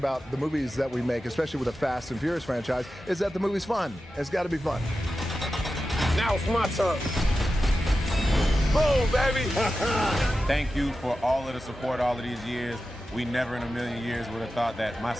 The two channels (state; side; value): normal; both; correlation 0.92